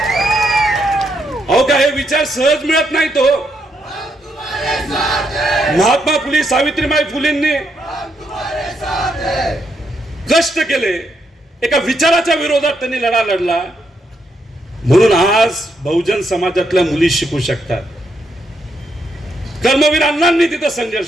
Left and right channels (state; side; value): normal; both; correlation 0.78